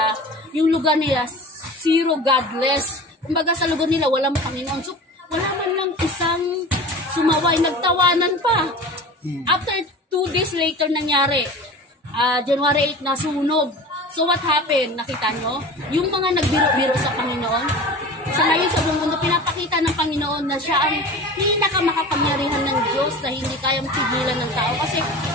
yung lugar nila, zero godless. Kumbaga, sa lugar nila, walang Panginoon. So, wala man lang isang sumaway, nagtawanan pa. After 2 days later nangyari, January 8 nasunog. So what happened? Nakita nyo? Yung mga nagbiro-biro sa Panginoon, sa ngayon sa buong mundo, pinapakita ng Panginoon na siya ang pinakamakapangyarihan ng Diyos na hindi kayang pigilan ng tao. Kasi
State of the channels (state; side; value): normal; both; correlation 0.36